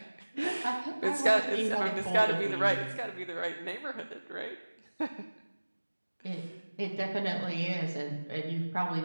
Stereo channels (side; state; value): both; inverted; correlation -1.00